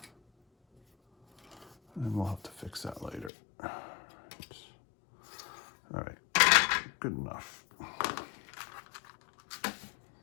And we'll have to fix that later. All right, good enough.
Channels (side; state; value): right; drops out; at 3.3 s